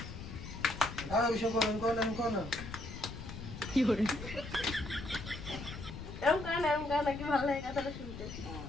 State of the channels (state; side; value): noise; left; rumble, 10 dB below the sound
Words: আর বিষয় কোন না কি করে এরকম গান নাকি ভালো লাগে কথাটা শুনতে।